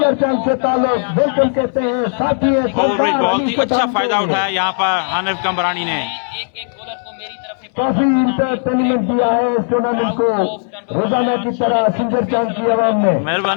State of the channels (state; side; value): silent; right; 65 dB below the other